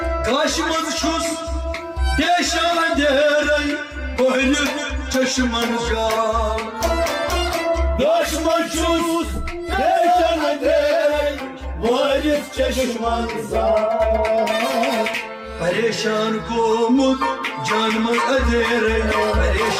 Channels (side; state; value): both; identical; correlation 1.00